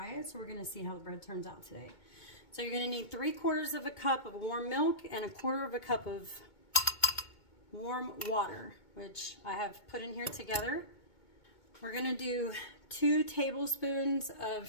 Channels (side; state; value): right; late; 2.2 ms